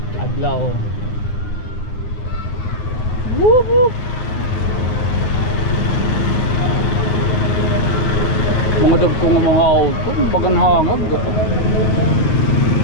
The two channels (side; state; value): right; late; 9.7 ms